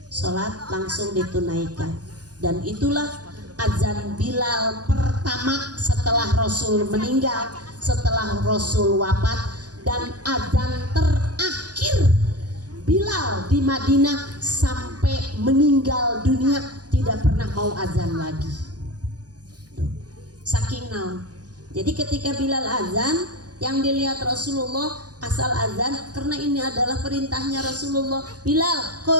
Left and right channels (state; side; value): late; left; 0.68 ms